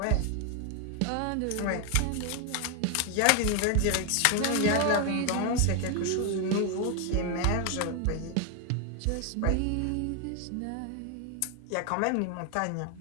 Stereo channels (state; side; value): different; both; correlation 0.01